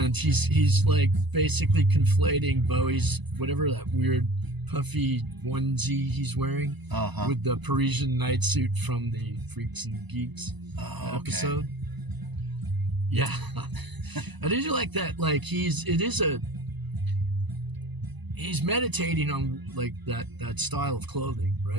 he's like basically conflating Bowie's whatever that weird puffy onesie he's wearing with the Parisian night suit from the Freaks and Geeks episode. Yeah. I did like that. Like he's meditating on like that style of clothing,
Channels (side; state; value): left; late; 1.0 ms